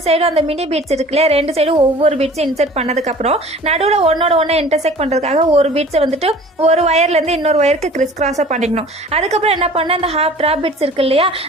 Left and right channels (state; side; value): normal; both; correlation 0.46